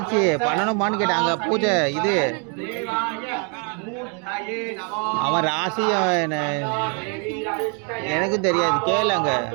பண்ணணுமான்னு கேட்டாங்க பூஜை இது அவன் ராசி எனக்கும் தெரியாது கேளுங்க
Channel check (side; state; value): left; quieter; 37.7 dB